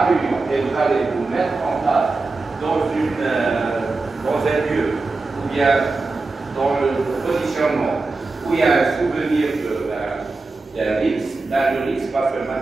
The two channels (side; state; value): left; quieter; 3.6 dB